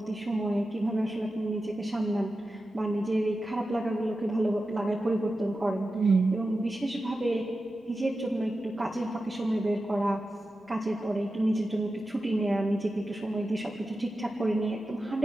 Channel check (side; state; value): both; normal; correlation 0.92